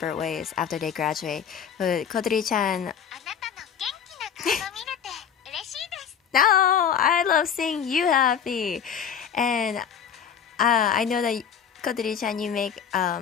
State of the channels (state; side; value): quieter; right; 7.9 dB